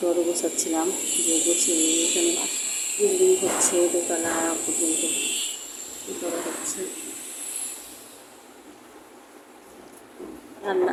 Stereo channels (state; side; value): identical; both; correlation 1.00